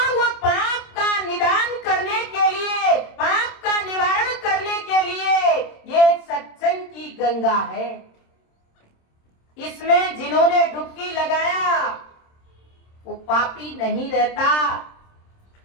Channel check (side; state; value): right; late; 26 ms